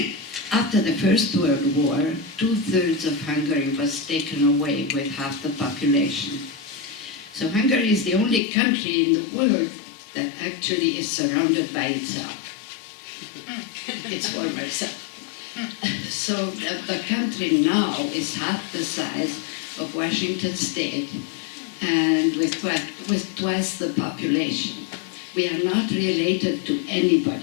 After the First World War, 2/3 of Hungary was taken away with half the population. So Hungary is the only country in the world that actually is surrounded by itself, its former self. So the country now is half the size of Washington State and with twice the population. We are not related to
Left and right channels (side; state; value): right; drops out; at 8.4 s